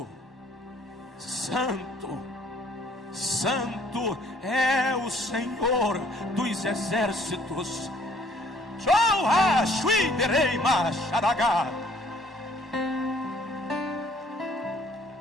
Santo, Santo é o Senhor dos exércitos.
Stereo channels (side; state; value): both; normal; correlation 0.60